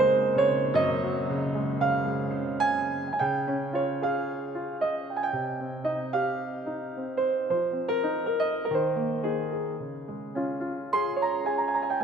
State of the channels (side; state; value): both; normal; correlation 0.64